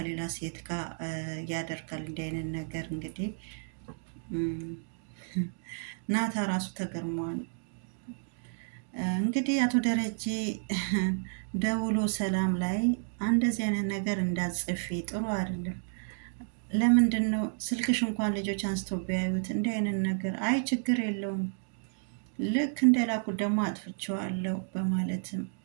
ሴት ጋር ያደርጋል እንዲህ አይነት ነገር እንግዲህ ናታ ራሱ ተገርሟል። እንግዲህ አቶ ደረጀ ደውሎ ሰላም ላይ እንደዚህ አይነት ነገር እንዳጽፊ ጥሩ አይደለም። ለምንድን ነው ስልክሽ እንኳን ልጆች አንስተው ቢያዩት እንዲህ አይነት ነገር? አይ ችግር የለውም ልክ እንደላኩት ደግሞ አጥፍቼዋለሁ በማለትም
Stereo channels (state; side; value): silent; left; digital silence